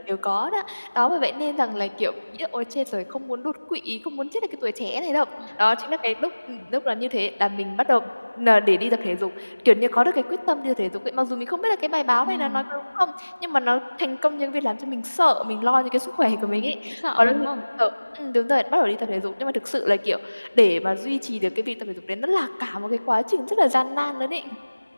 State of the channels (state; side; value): inverted; both; correlation -1.00